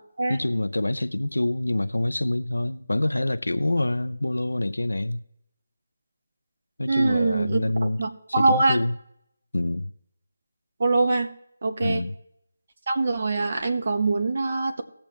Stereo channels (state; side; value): inverted; both; correlation -0.92